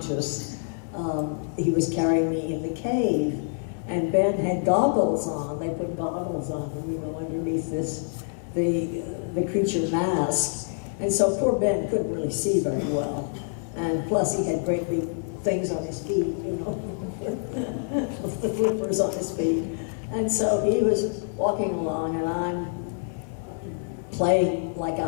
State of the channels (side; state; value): right; silent; 61 dB below the other